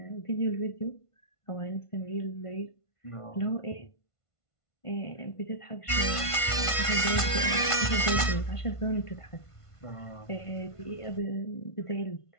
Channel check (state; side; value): late; right; 1.5 ms